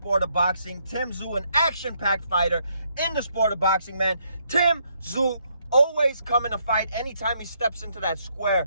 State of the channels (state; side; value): inverted; both; correlation -0.73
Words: of boxing. Tszyu, an action-packed fighter in the sport of boxing, man. Tszyu always coming to fight anytime he steps into that